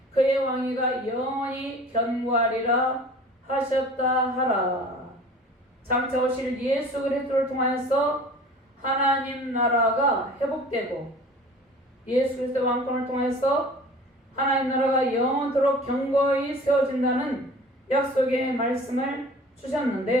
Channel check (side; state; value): both; normal; correlation 0.43